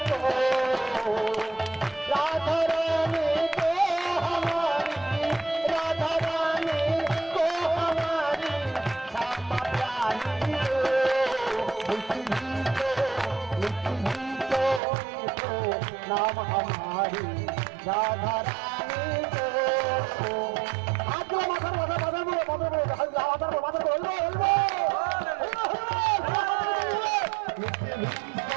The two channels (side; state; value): left; drops out; at 14.8 s